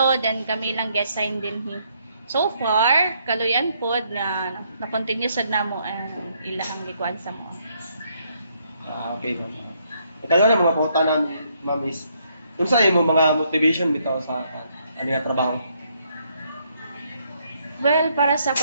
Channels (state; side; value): inverted; both; correlation -0.72